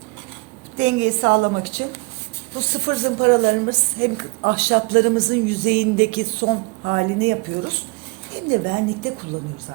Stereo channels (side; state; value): left; quieter; 28.8 dB